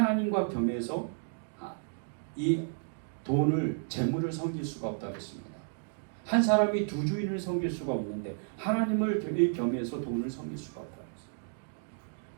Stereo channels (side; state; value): left; silent; digital silence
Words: 겸해서 이 재물을 섬길 수가 없다고 했습니다. 한 사람이 두 주인을 섬길 수가 없는데 하나님을 겸해서 돈을 섬길 수가 없다고 했습니다.